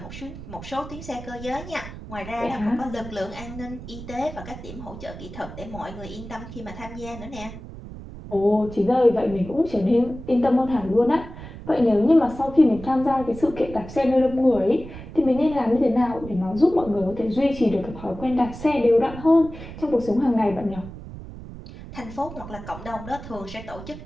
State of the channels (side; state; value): right; noise; rumble, 13 dB below the sound